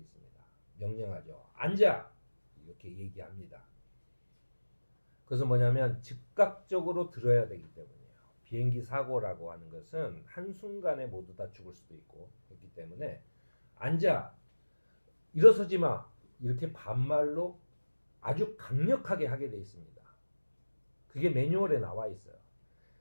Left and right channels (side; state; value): both; inverted; correlation -1.00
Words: 명령하죠. 앉아! 이렇게 얘기합니다. 그래서 뭐냐면 즉각적으로 들어야 되기 때문이에요. 비행기 사고라고 하는 것은 한순간에 모두 다 죽을 수도 있고 그렇기 때문에 앉아! 일어서지 마! 이렇게 반말로 아주 강력하게 하게 돼 있습니다. 그게 매뉴얼에 나와 있어요.